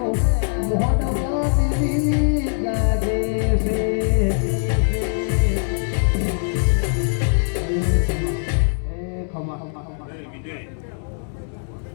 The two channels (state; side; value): silent; right; digital silence